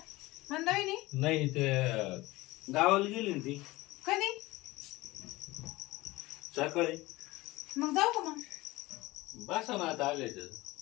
मंदाविनी? नाही ते गावाला गेली ना ती कधी? सकाळी. मग जाऊ का मग? बसा ना आता आले तर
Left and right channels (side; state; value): right; quieter; 20.1 dB